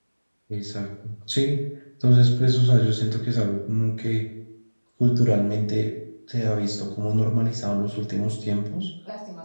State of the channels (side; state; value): both; inverted; correlation -1.00